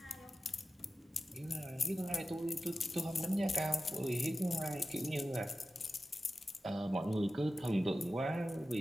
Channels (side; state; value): both; normal; correlation 0.93